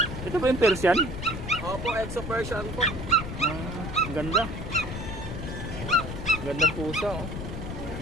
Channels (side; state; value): left; noise; rumble, 7 dB below the sound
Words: Ito ba yung Persian? Opo, Exo Persian po. Ang ganda. Ganda pusa, oh.